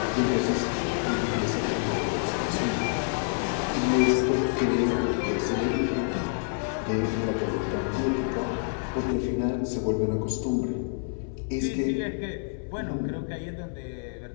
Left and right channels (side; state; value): right; silent; digital silence